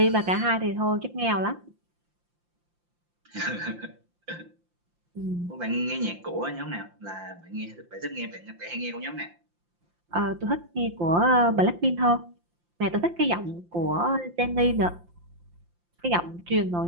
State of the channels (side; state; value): left; late; 5.8 ms